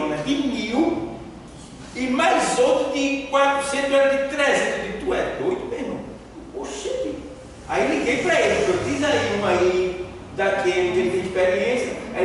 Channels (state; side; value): identical; both; correlation 1.00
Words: de 1.000 e mais outro de 400, era de 300. Eu disse, tu é doido, meu irmão? Oxente. Aí liguei para ele, eu diz aí uma aí, daquele que ele tem experiência. Aí